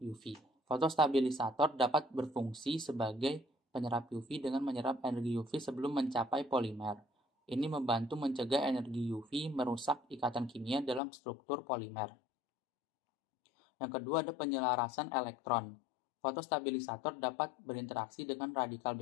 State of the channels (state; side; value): drops out; right; at 11.0 s